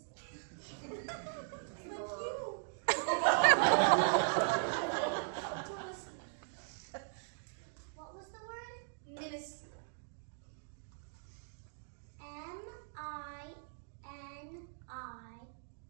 Don't listen. What was the word? Minuscule. MINISCLE.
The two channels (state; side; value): silent; left; digital silence